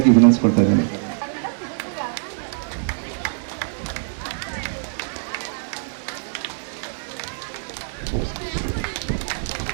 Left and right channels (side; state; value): left; silent; digital silence